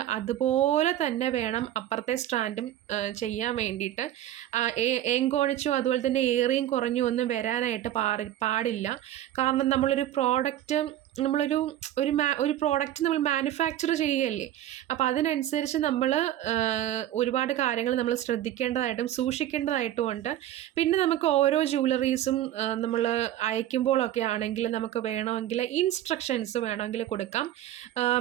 അതുപോലെ തന്നെ വേണം അപ്പുറത്തെ സ്ട്രാൻഡും ചെയ്യാൻ വേണ്ടിയിട്ട്. ഏങ്കോണിച്ചു അതുപോലെ തന്നെ ഏറിയും കുറഞ്ഞും ഒന്നും വരാനായിട്ട് പാടില്ല. കാരണം നമ്മളൊരു പ്രോഡക്റ്റ് നമ്മൾ മാനുഫാക്ചർ ചെയ്യുകയല്ലേ. അപ്പോൾ അതിനനുസരിച്ച് നമ്മൾ ഒരുപാട് കാര്യങ്ങൾ നമ്മൾ ശ്രദ്ധിക്കേണ്ടതായിട്ടും സൂക്ഷിക്കേണ്ടതായിട്ടും ഉണ്ട്. പിന്നെ നമുക്ക് ഓരോ ജ്വല്ലറീസും നമ്മൾ അയക്കുമ്പോഴൊക്കെ ആണെങ്കിൽ നമുക്ക് വേണമെങ്കിൽ ഇൻസ്ട്രക്ഷൻസ് വേണമെങ്കിൽ കൊടുക്കാം.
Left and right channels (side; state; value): left; quieter; 12.6 dB